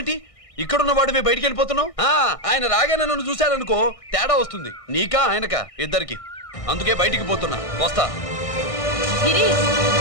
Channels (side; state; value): right; late; 1.6 ms